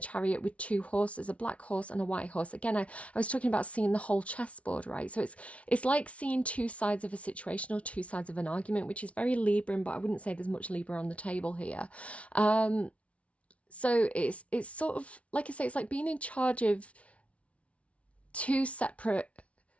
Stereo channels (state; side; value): late; right; 0.063 ms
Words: with two horses, a black horse and a white horse. Again, I was talking about seeing the whole chessboard, right? So it's like seeing two sides of a situation or two sides of an argument, which is very Libran, but I wouldn't say there's much Libra on the table here. So it's sort of, like I say, it's like being in charge of two separate